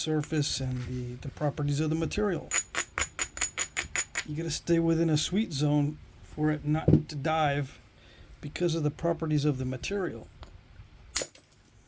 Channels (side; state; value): both; identical; correlation 1.00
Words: and the properties of the material. You got to stay within a sweet zone for it not to dive because of the properties of the material.